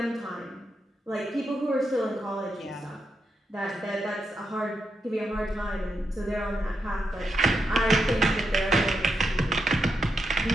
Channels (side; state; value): both; normal; correlation 0.84